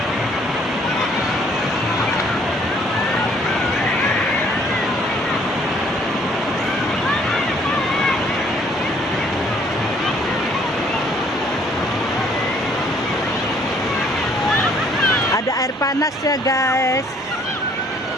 Ada air panas ya guys.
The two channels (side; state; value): both; normal; correlation 0.62